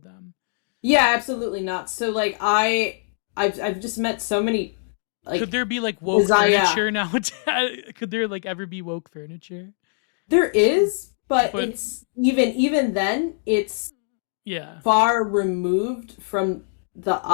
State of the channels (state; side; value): silent; right; digital silence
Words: yeah, absolutely not. So like I've just met so many Could like there be like woke design. Yeah, furniture now? Could there like ever be woke furniture? there is, but But it's even then it's yeah, far removed from the